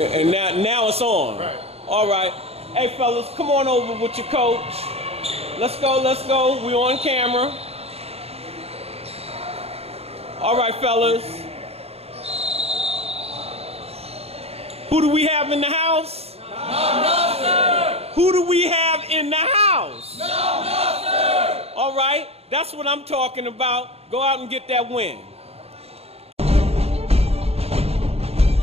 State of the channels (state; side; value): late; left; 0.29 ms